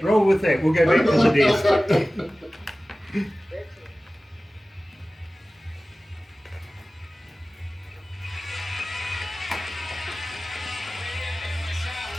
Roll with that. We'll go back to the desk.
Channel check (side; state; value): both; normal; correlation 0.97